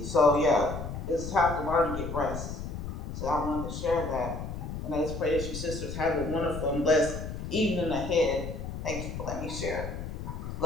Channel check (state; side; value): noise; left; rumble, 6 dB below the sound